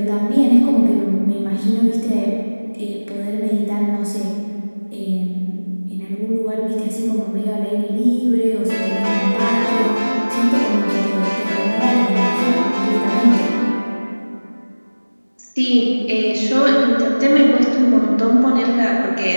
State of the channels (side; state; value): both; inverted; correlation -1.00